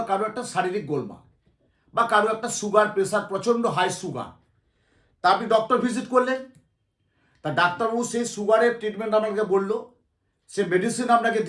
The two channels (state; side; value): identical; both; correlation 1.00